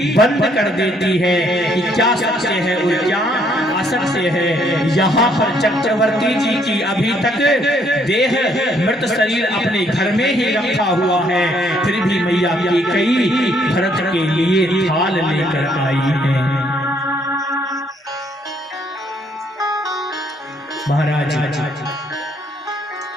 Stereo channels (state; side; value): normal; both; correlation 0.68